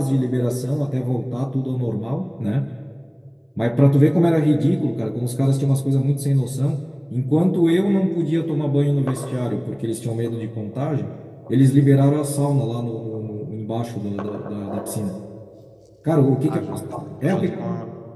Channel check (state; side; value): identical; both; correlation 1.00